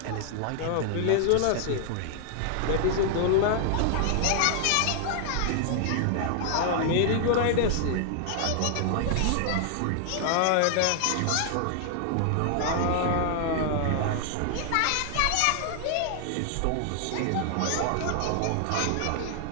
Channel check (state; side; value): different; both; correlation 0.00